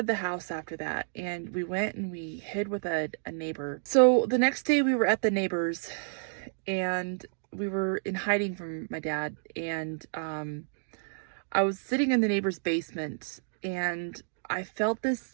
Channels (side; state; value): left; silent; digital silence